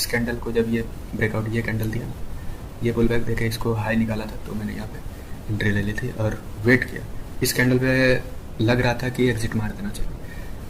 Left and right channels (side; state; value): both; identical; correlation 1.00